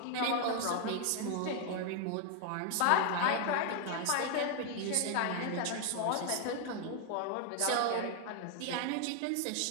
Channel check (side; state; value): both; different; correlation 0.01